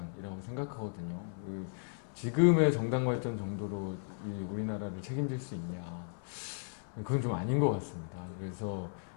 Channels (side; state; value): right; silent; 54 dB below the other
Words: 생각하거든요. 지금의 정당 발전 정도로 이 우리나라를 책임질 수 있냐, 그건 좀 아닌 것 같습니다. 그래서